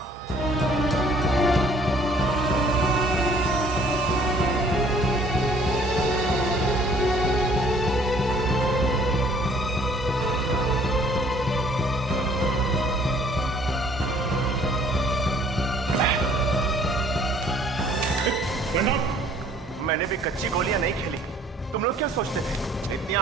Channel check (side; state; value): both; normal; correlation 0.58